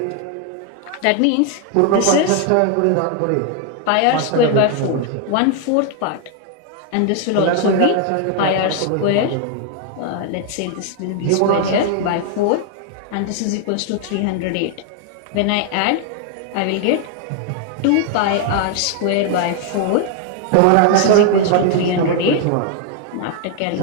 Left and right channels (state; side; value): different; both; correlation 0.00